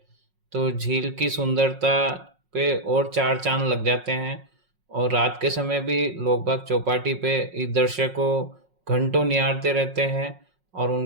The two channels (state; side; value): late; left; 5.5 ms